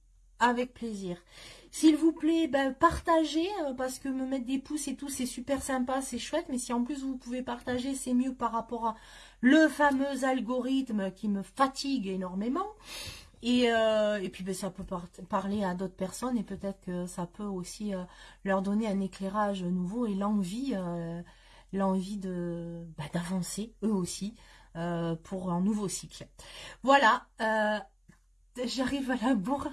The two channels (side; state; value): both; identical; correlation 1.00